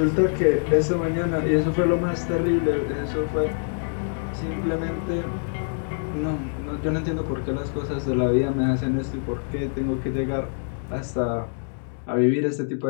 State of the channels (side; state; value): right; silent; 62 dB below the other